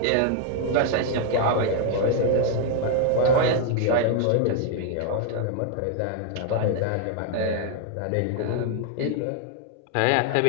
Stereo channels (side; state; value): both; different; correlation 0.00